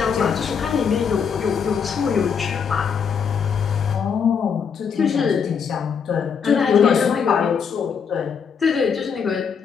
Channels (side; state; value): right; quieter; 6.6 dB